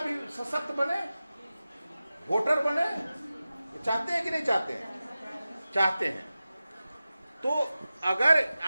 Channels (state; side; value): inverted; both; correlation -0.95